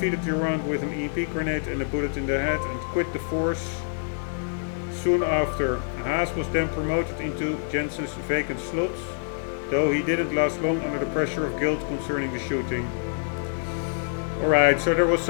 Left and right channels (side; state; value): right; silent; 58 dB below the other